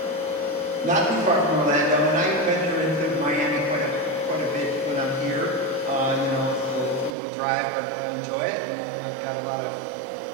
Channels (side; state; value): left; drops out; at 7.2 s